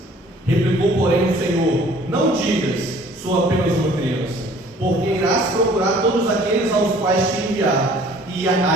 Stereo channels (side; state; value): both; normal; correlation 0.54